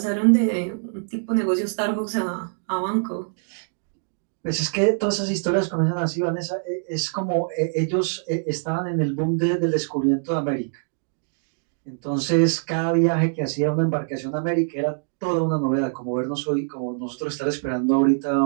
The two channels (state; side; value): silent; left; digital silence